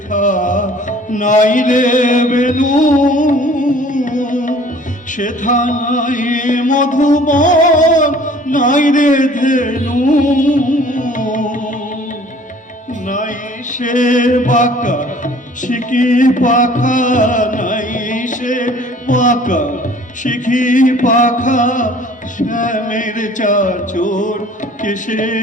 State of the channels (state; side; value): normal; both; correlation 0.52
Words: নাই রে বেনু, সেথা নাই মধুবন, নাই রে ধেনু। নাই সে বাঁকা শিখি পাখা, নাই সে বাঁকা শিখি পাখা, শ্যামের চাচোর কেশে,